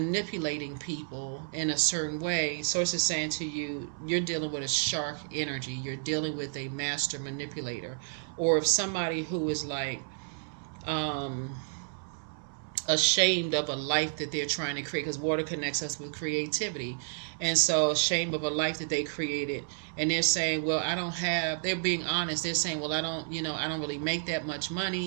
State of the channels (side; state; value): left; silent; 57 dB below the other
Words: people in a certain way. Source is saying to you, you're dealing with a shark energy. You're dealing with a master manipulator. Or if somebody who is like, ashamed of a life that they're trying to create, because water connects us with creativity. And so ashamed of a life that they created, and they're saying, well, I don't have, they're being honest, they're saying, well, I don't, I don't really make that much